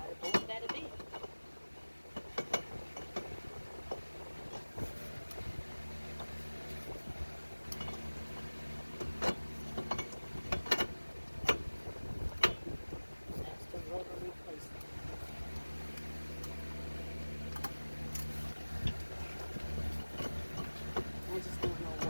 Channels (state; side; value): inverted; both; correlation -1.00